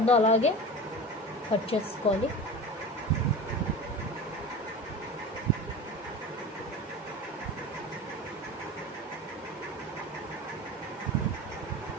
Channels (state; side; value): normal; both; correlation 0.31